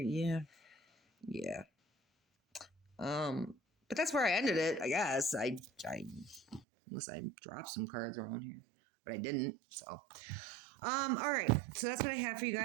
But that's where I ended it, I guess. I unless I dropped some cards around here, but I didn't. So, all right. So that's what I have for you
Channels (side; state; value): left; drops out; at 6.7 s